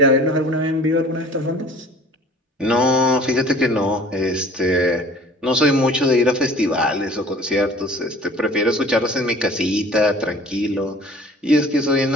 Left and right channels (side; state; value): both; normal; correlation 0.47